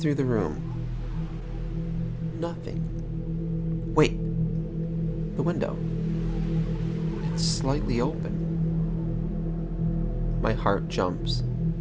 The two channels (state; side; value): identical; both; correlation 1.00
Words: the room. Nothing. Wait. The window. It's slightly open. My heart jumps.